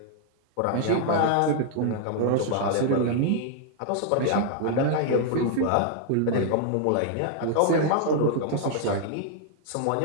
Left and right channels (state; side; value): different; both; correlation 0.00